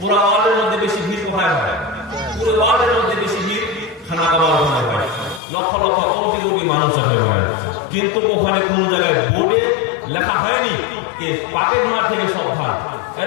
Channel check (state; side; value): drops out; right; at 5.4 s